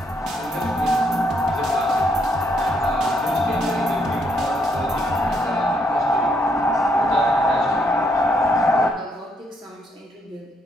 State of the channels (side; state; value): both; normal; correlation 0.73